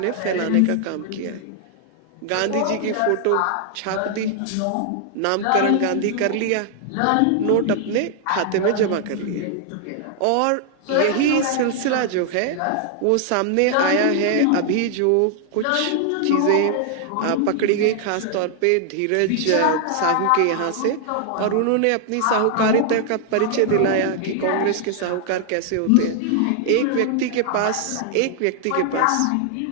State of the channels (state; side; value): different; both; correlation 0.00